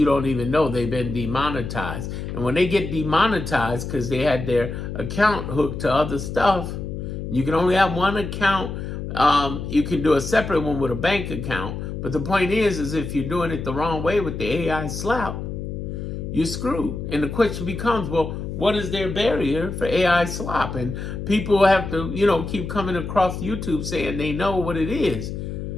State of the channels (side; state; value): left; noise; hum, 6 dB below the sound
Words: don't even know they've been demonetized. And when they get demonetized because they had their account hooked to other stuff, you can only have one account. You can do a separate one with a bank account. But the point is if you're doing it the wrong way with the AI slap, you're screwed. And the question becomes, well, what is their barrier for AI slop? And people have to, keep coming across YouTube saying they know what it is.